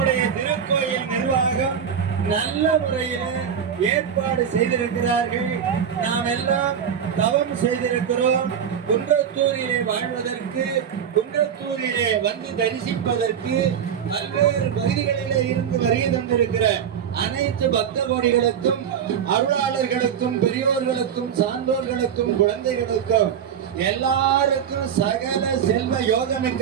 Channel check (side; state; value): left; quieter; 8.2 dB